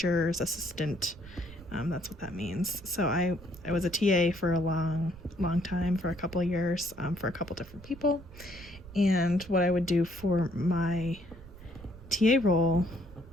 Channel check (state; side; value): noise; right; rumble, 18 dB below the sound